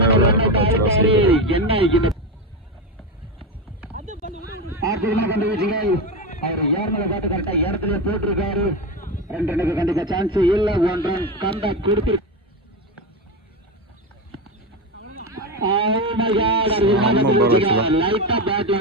அவர் ஏர்மலை காட்டு கரெக்டா இடத்துல போட்டிருக்காரு. 2 ரனுக்கு கண்டிப்பா சான்ஸ் இல்ல. 1 ரன் கண்டா கொடுத்து லைட்டா பேட்ல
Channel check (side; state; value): both; normal; correlation 0.16